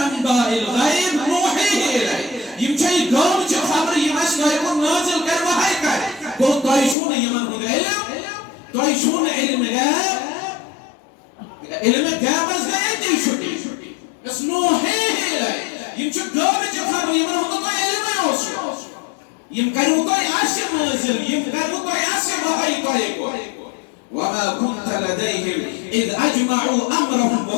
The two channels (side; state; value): right; drops out; at 7.0 s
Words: أنباء الغيب نوحيه إليه يمشي قومك خبر يمش طيقون نازل كان وحي كان قلت طيشون يمن هذا علم طيشون علم غيب علم غيب بس غيب تيشوتي بس نوحيه إليه يمشي قومك خبر يمن هذا طي علم يوصل يمكن طي عشر نازل يمكن طي عشر وحي طيقون وما كنت لديهم إذ أجمعوا أمرهم